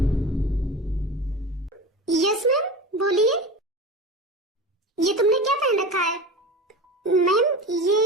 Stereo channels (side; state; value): both; normal; correlation 0.30